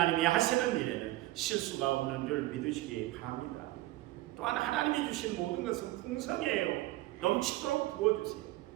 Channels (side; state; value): left; quieter; 17.8 dB